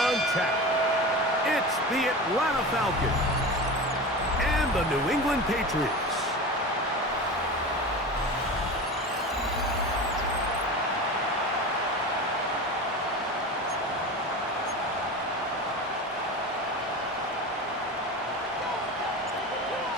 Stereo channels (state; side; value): normal; both; correlation 0.29